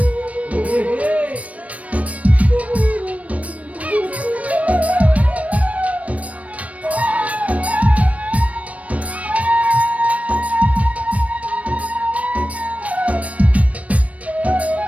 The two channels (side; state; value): left; late; 0.066 ms